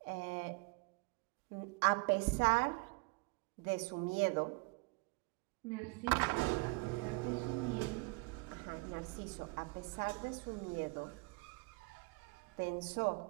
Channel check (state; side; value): quieter; left; 28.1 dB